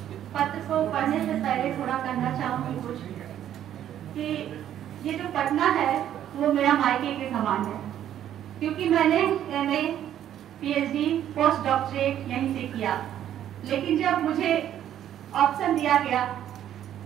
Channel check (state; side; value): quieter; left; 10.9 dB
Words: पत्र को पढ़ने से पहले थोड़ा कहना चाहूंगी कुछ कि ये जो पढ़ना है वो मेरा मायके के समान है, क्योंकि मैंने MA, PhD, पोस्ट डॉक्टरेट यहीं से किया। लेकिन जब मुझे ऑप्शन दिया गया